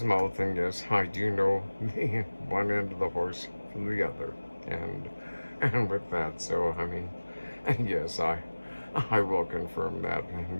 mouth, and yes, I do know the one end of the horse from the other, and with that, so I mean, yes, I will confirm that,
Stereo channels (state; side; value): inverted; both; correlation -1.00